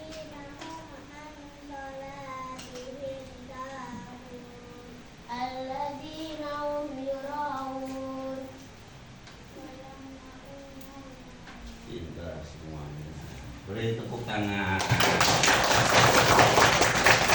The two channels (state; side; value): identical; both; correlation 1.00